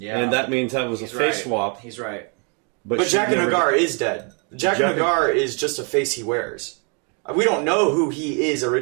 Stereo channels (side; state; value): left; quieter; 37.3 dB